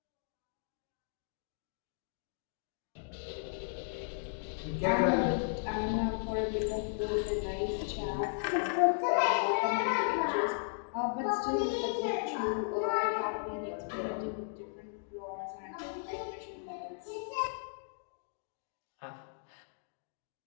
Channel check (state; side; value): silent; right; digital silence